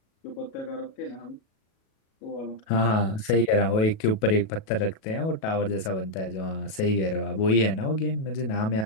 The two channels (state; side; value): late; right; 37 ms